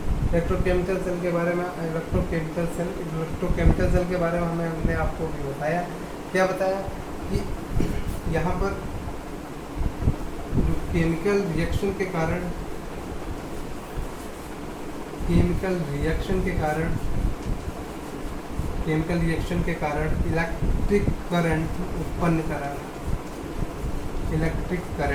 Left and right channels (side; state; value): both; identical; correlation 1.00